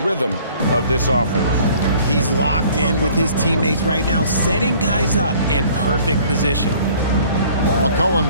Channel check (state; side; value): inverted; both; correlation -0.54